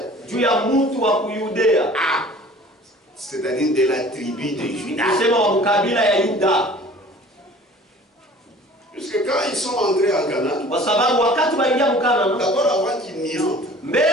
C'est-à-dire de la tribu de Juda. Puisque quand ils sont entrés en Canaan, d'abord avant qu'ils n'y entrent,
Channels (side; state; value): both; normal; correlation 0.47